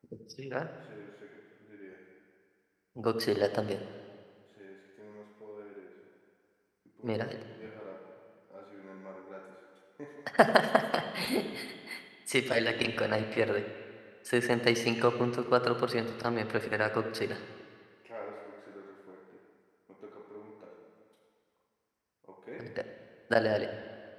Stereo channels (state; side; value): identical; both; correlation 1.00